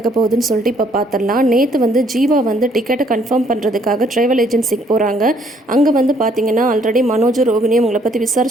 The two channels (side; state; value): both; normal; correlation 0.65